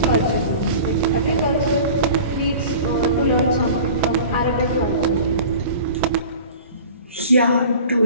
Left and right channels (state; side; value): inverted; both; correlation -0.41